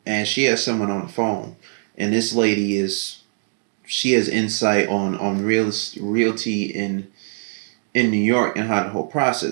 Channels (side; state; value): left; silent; 56 dB below the other